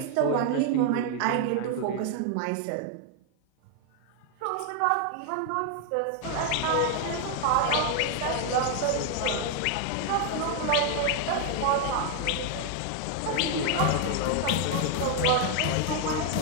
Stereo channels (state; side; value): different; both; correlation 0.00